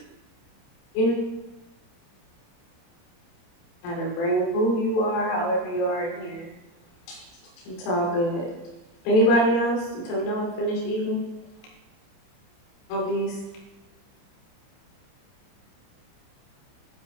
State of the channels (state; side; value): late; right; 30 ms